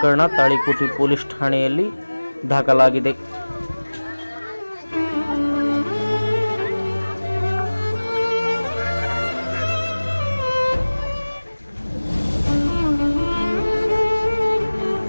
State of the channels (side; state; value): both; inverted; correlation -1.00